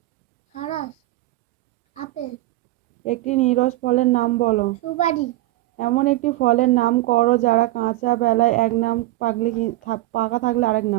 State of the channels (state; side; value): quieter; left; 17.3 dB